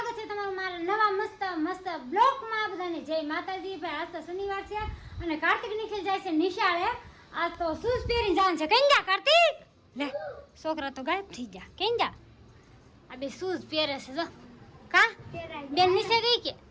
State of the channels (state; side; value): identical; both; correlation 1.00